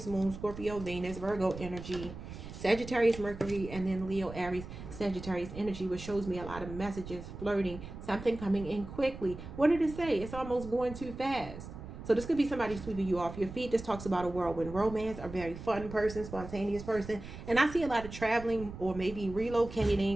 Moon, Scorpio, Venus, Virgo energy, Sagittarius, Mercury, and then Leo, Aries, Sagittarius energy, which shows me a lot of messages, flirting, something coming in quickly. What did it say? It's almost going too fast. So this could be somebody sweeping you off your feet. This talks about a whirlwind romance, a very fun person, spontaneous person. And I see a lot of traveling or maybe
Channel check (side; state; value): right; noise; rumble, 12 dB below the sound